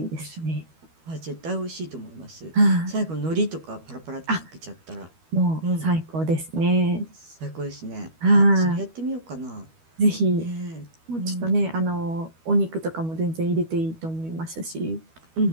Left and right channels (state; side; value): late; left; 12 ms